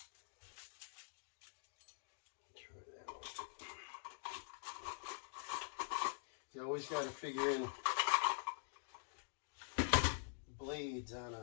Try that one. You always got to figure in blades on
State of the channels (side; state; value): right; silent; digital silence